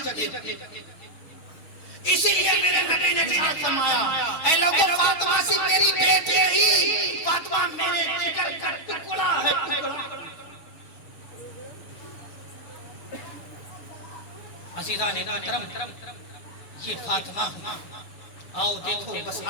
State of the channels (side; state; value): right; late; 6.2 ms